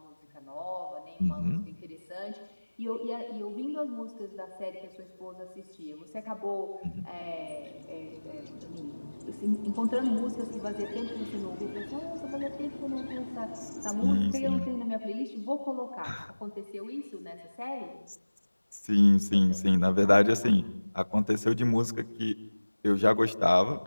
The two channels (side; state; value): both; inverted; correlation -1.00